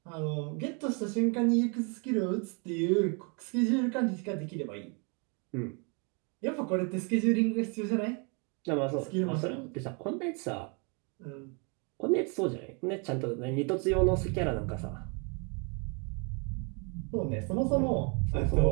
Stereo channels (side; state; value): left; quieter; 34.4 dB